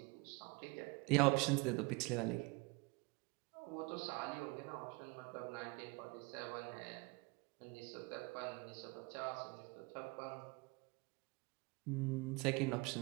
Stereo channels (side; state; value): left; quieter; 26.4 dB